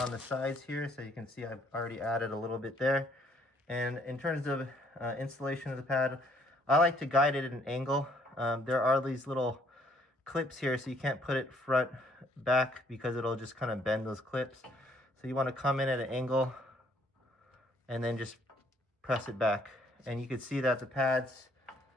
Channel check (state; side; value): normal; both; correlation 0.65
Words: the sides here, so you can see I've already added a little bit there. And in terms of installation of the pad, I like to guide it at an angle. There are these little clips here, so you can't put it front back because it'll just kind of bend those clips. So you want to come in at an angle and then just press it back. And you can see that the pads